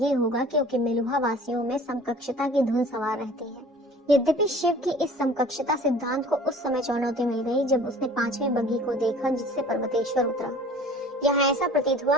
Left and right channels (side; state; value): both; normal; correlation 0.47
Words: होगा क्योंकि मेलुहा वासियों में समकक्षता की धुन सवार रहती है। यद्यपि शिव की इस समकक्षता सिद्धांत को उस समय चुनौती मिल गई जब उसने 5वीं बग्घी को देखा जिससे पर्वतेश्वर उतरा। यहाँ ऐसा प्रतीत हुआ